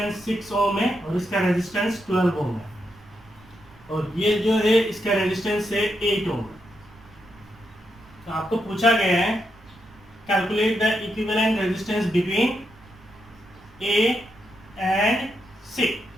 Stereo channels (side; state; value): right; noise; rumble, 25 dB below the sound